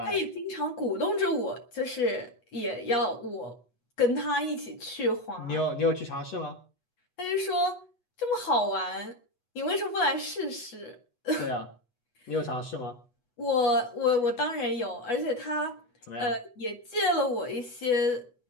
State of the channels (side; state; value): right; late; 8.2 ms